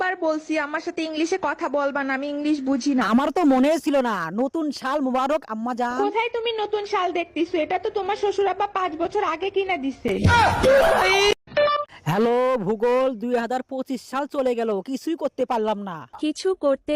বলছি আমার সাথে ইংলিশে কথা বলবা না, আমি ইংলিশ বুঝি না। আমার তো মনে ছিল না। নতুন সাল মুবারক আম্মাজান। কোথায় তুমি নতুন শাল দেখতেছো? এটা তো তোমার শ্বশুর আব্বা 5 বছর আগে কিনা দিছে। হ্যালো ভূগোল, 2025 সাল চলে গেল, কিছুই করতে পারলাম না। কিছু করতে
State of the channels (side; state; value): both; identical; correlation 1.00